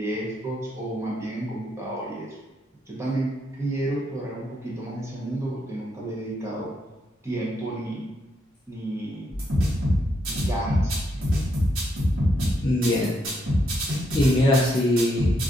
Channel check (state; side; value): normal; both; correlation 0.78